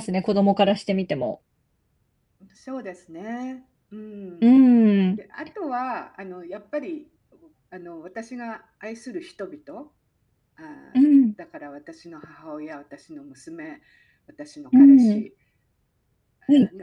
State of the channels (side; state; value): both; identical; correlation 1.00